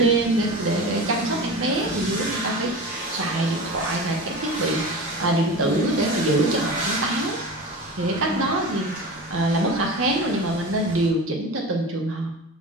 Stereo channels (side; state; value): both; normal; correlation 0.31